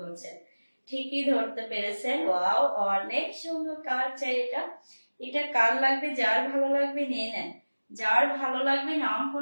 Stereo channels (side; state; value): both; inverted; correlation -1.00